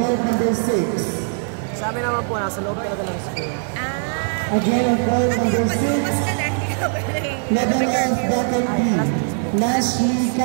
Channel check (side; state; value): left; silent; 65 dB below the other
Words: number 6. Sa amin naman po, nasa loob talaga ng school. Again, on court number 6. Level F bracket B. Nashley